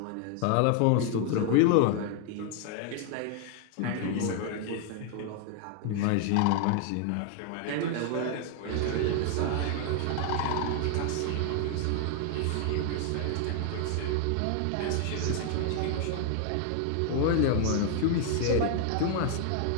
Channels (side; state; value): both; different; correlation 0.00